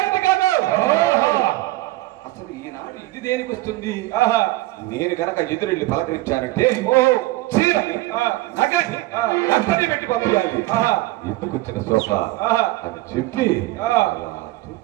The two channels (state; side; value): quieter; left; 18.4 dB